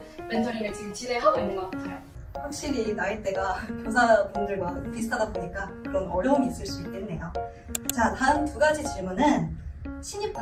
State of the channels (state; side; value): identical; both; correlation 1.00